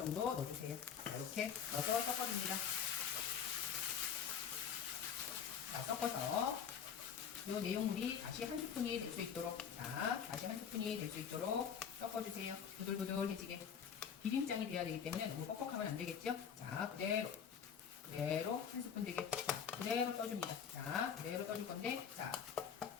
넣어주세요. 자, 이렇게 넣어서 섞어줍니다. 자, 섞어서 이 내용물이 다시 한 스푼이 될 수 있도록, 자, 다시 한 스푼이 될 수 있도록 섞어주세요. 부들부들해지게. 비빔장이 돼야 되기 때문에 너무 뻑뻑하면 안 되겠죠? 자, 그대로 한 스푼 되게. 자, 그대로 떠줍니다. 자, 그대로 떠줄 건데, 자,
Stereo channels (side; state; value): right; quieter; 7.6 dB